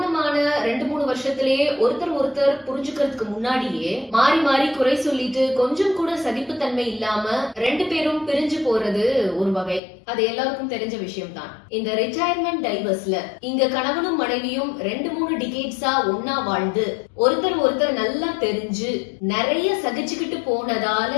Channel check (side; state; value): right; drops out; at 9.8 s